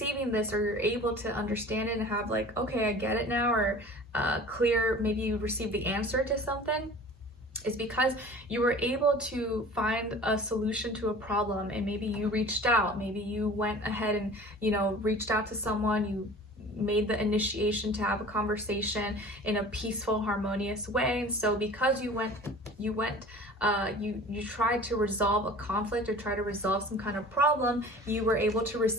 this, or you're able to understand it and have like, okay, I get it now, or clear, maybe you received the answer to something, is because you were able to find a solution to a problem, and maybe you reached out, maybe you went ahead and, you know, reached out to someone, you made the initiation to have a conversation in a peaceful, harmonious way. And so because you tried to resolve a conflict, or try to resolve some kind of problem, you were able to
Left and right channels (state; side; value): normal; both; correlation 0.43